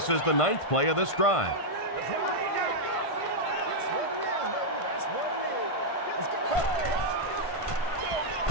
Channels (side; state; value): right; late; 1.5 ms